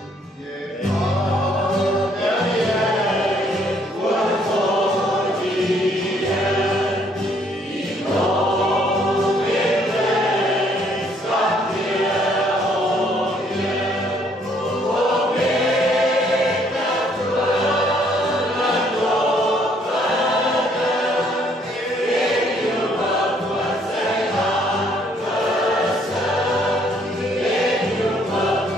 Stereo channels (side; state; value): both; normal; correlation 0.66